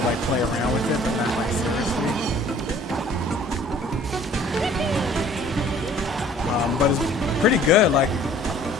like play around with it, but not like seriously. But it's pretty good, like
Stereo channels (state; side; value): normal; both; correlation 0.53